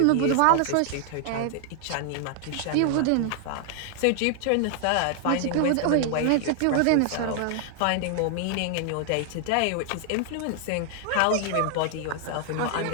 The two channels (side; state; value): both; different; correlation 0.00